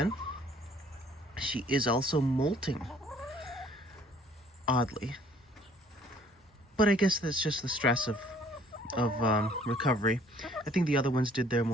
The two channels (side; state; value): both; normal; correlation 0.58